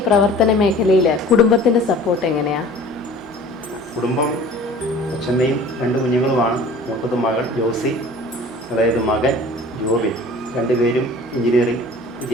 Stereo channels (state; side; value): normal; both; correlation 0.45